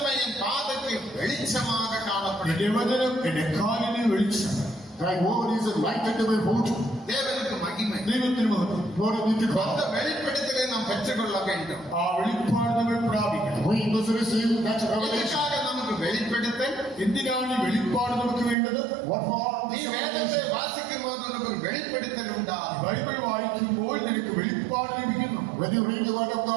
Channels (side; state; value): left; drops out; at 18.6 s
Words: என் பாதைக்கு வெளிச்சமாக காணப்படும். എന്റെ വചനം എന്റെ കാലിന് വെളിച്ചം. Thy word is a light unto my foot. தேவனுக்கு மகிமை. ദൈവത്തിന് മഹത്വം. Glory be to அந்த God. வெளிப்படுத்தலை நாம் பெற்றுக்கொள்ள வேண்டும். ആ വെളിപ്പാട് നമ്മൾ പ്രാപിക്കണം. We must receive that revelation. இதற்காக நமக்கு வெளிப்படுத்தல். എന്തിനാണ് ഈ വെളിപ്പാട് നമുക്ക് വേണ്ടത്? What for? நீ வேதத்தை வாசிக்கும் போது உனக்கு ஒரு வெளிப்படுத்தல் உண்டாகும். ബൈബിൾ വായിക്കുമ്പോൾ നിനക്ക് വെളിപ്പാട് ലഭിക്കുന്നു. When you read the word of